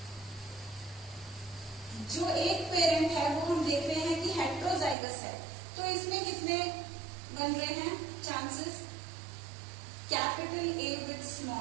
जो एक पेरेंट है वो हम देख रहे हैं कि हेट्रोजाइगस है, तो इसमें कितने बन रहे हैं chances, capital A with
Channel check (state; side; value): drops out; left; at 5.0 s